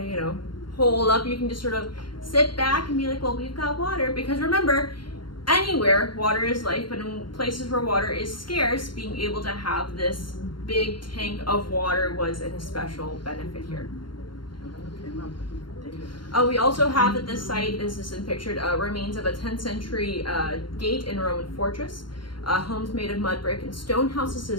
holed up, you can just sort of sit back and be like, well, we've got water. Because remember, anywhere water is life, but in places where water is scarce, being able to have this big tank of water was an especial benefit here. We also have at this site, this is pictured, remains of a 10th century gate in a Roman fortress, homes made of mud brick and stone houses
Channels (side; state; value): right; late; 0.72 ms